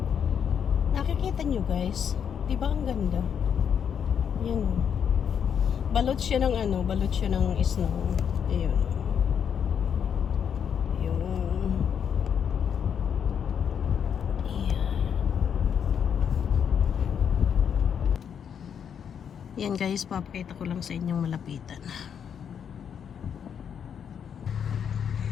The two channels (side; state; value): right; quieter; 7.9 dB